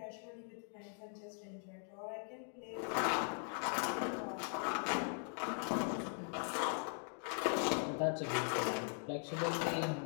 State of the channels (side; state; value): right; silent; 51 dB below the other